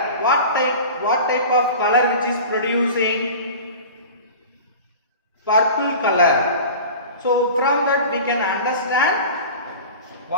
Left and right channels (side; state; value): both; inverted; correlation -0.36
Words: What type of color which is producing? Purple color. So from that we can understand